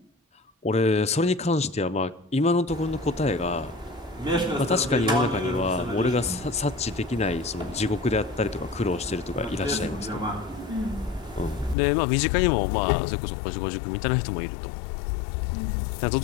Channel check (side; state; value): right; drops out; at 11.8 s